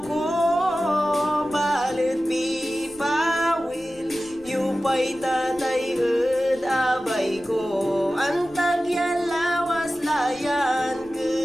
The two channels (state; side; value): noise; left; rumble, 25 dB below the sound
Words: ko balit pipawil yupay tatay ed abay ko ang tagyalawas layan